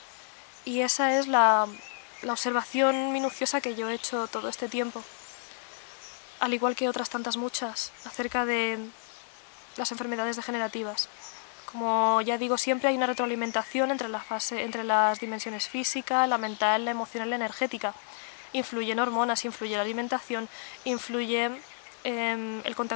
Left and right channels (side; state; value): right; silent; digital silence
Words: Y esa es la observación minuciosa que yo he hecho todo este tiempo, al igual que otras tantas muchas, acerca de las enfermedades degenerativas. Como ya digo, siempre hay una retroalimentación entre las dimensiones física, la mental, la emocional y la energética. Influyen hormonas, influye la alimentación, influye el